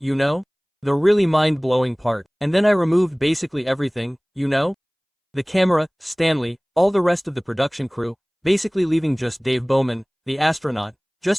the really mind-blowing part. And then I removed basically everything, the camera, Stanley, all the rest of the production crew, basically leaving just Dave Bowman, the astronaut,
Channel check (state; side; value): identical; both; correlation 1.00